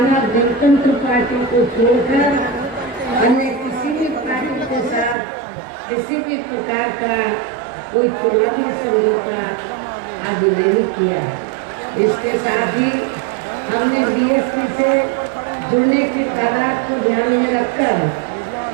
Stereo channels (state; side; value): drops out; left; at 5.2 s